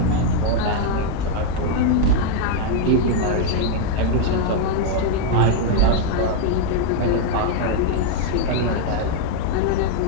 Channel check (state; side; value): different; both; correlation 0.00